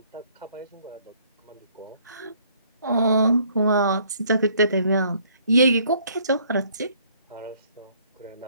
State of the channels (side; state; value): both; inverted; correlation -0.63